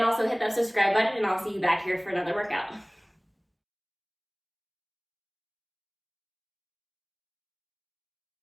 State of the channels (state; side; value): identical; both; correlation 1.00